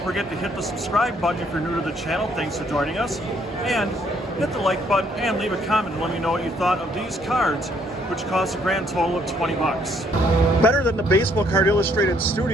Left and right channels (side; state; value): both; normal; correlation 0.67